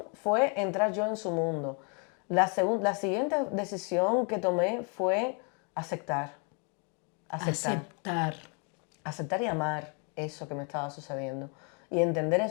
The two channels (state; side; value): quieter; right; 37.3 dB